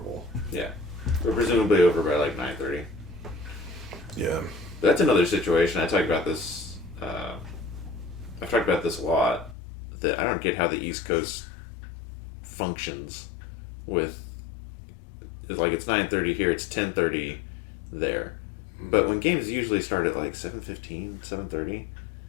Yeah. We're presumably over by like 9:30. Yeah. That's another situation. I talk about this, I've talked about this a lot, that I don't get how the East Coast functions with, like, it's 9:30 here, it's 10:30 there. Mm-hmm. But when games usually start at like 7:15, 7:30,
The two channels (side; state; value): right; drops out; at 9.6 s